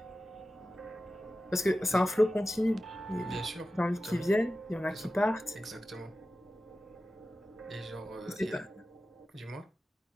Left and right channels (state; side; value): normal; both; correlation 0.94